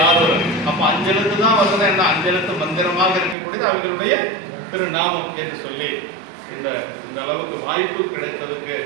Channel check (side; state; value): left; drops out; at 3.4 s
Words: ஆரூரர், அப்போ அஞ்செழுத்து தான் வருது. என்ன அஞ்செழுத்து மந்திரமாக இருக்கக்கூடியது அவர்களுடைய திருநாமம் என்று சொல்லி இந்த அளவுக்கு வாய்ப்பு கிடைத்ததுக்கு